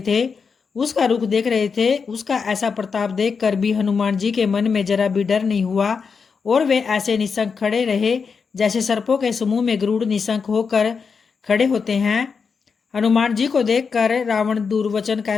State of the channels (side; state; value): right; quieter; 5.6 dB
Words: थे, उसका रुख देख रहे थे। उसका ऐसा प्रताप देखकर भी हनुमान जी के मन में जरा भी डर नहीं हुआ और वे ऐसे निशंक खड़े रहे जैसे सर्पों के समूह में गरुड़ निशंक होकर खड़े होते हैं। हनुमान जी को देखकर रावण दुर्वचन